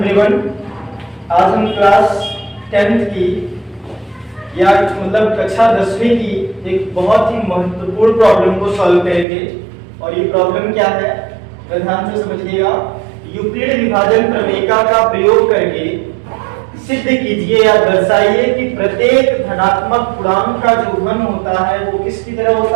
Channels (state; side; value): drops out; left; at 9.2 s